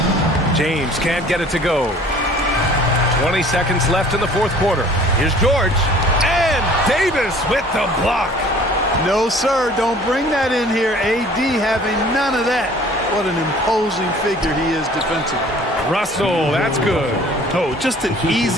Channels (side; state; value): both; normal; correlation 0.50